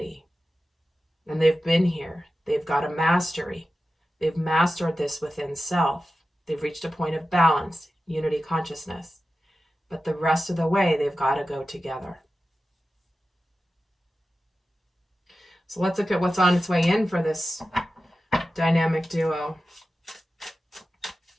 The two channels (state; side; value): normal; both; correlation 0.93